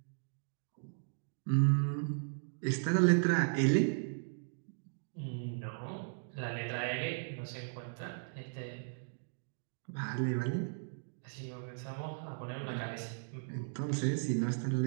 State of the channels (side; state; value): left; silent; digital silence